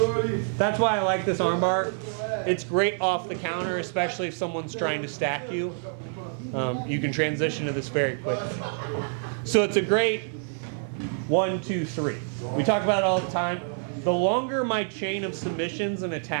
That's why I like this arm bar. It's great off the counter, especially if someone's trying to stack you. You can transition to this very quickly. So it's a great 1, 2, 3. We talk about it all the time. The longer my chain of submissions and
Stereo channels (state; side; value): silent; left; 60 dB below the other